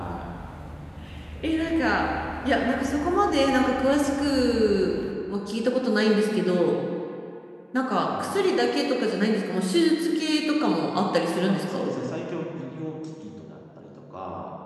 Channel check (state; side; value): identical; both; correlation 1.00